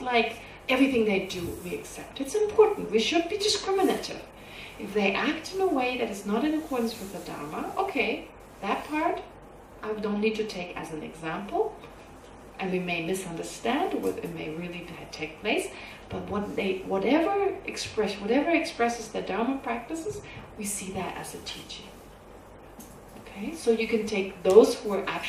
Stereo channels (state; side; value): identical; both; correlation 1.00